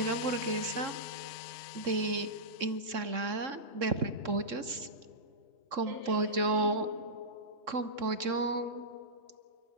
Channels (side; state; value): left; late; 3.6 ms